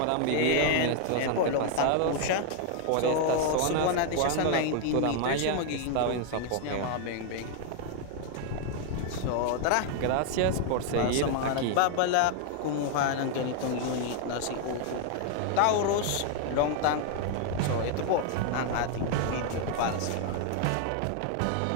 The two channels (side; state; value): both; different; correlation 0.00